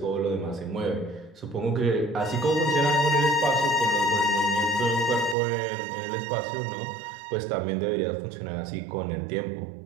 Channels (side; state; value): left; drops out; at 5.4 s